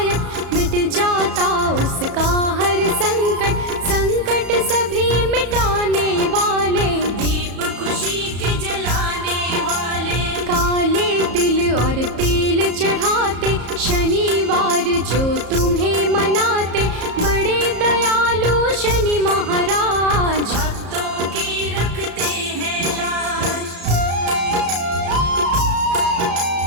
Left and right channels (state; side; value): late; left; 34 ms